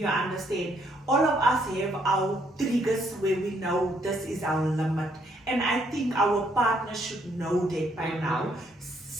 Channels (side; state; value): both; normal; correlation 0.70